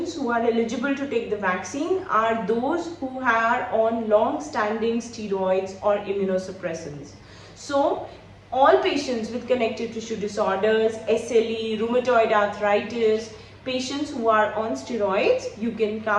who are eligible to take the vaccine are those who are on long-standing steroids or immunosuppressants. So, all patients with connective tissue disorders, SLE, rheumatoid arthritis, patients who are on steroids, you can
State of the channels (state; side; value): identical; both; correlation 1.00